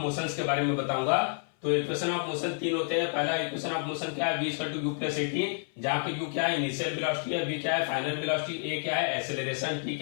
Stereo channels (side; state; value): right; silent; 58 dB below the other